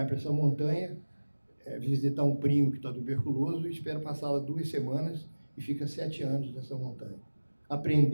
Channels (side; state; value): both; inverted; correlation -1.00